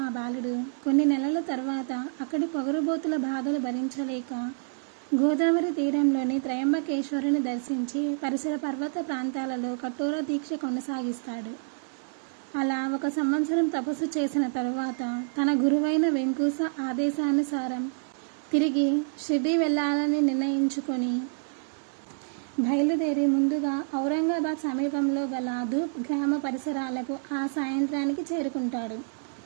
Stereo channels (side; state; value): left; silent; digital silence